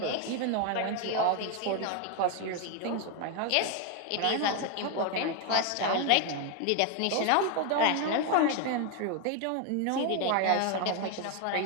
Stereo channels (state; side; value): different; both; correlation 0.01